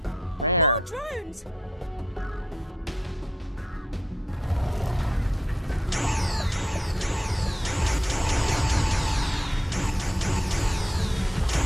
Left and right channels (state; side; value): normal; both; correlation 0.77